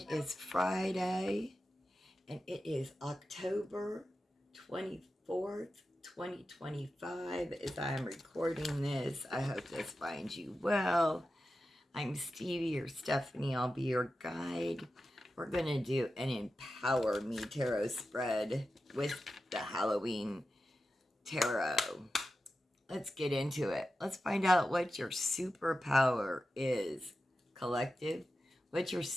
is Friday and it is October 24th, 2025 as I am recording this. I hope this finds you well. I'm Stevie or Stephanie. I'll be your guide. We're going to do an Empower Me Tarot spread with the Halloween Tarot. Let's get into it. Let's find out what your superpower is. Collective, what's your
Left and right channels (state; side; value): normal; both; correlation 0.92